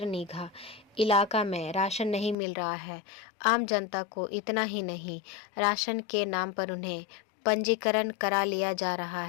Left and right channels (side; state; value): right; drops out; at 2.4 s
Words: नीघा इलाका में राशन नहीं मिल रहा है। आम जनता को इतना ही नहीं, राशन के नाम पर उन्हें पंजीकरण करा लिया जा रहा